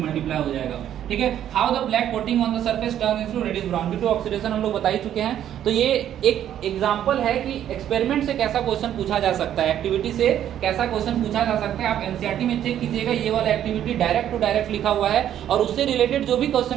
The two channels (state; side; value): quieter; left; 10.7 dB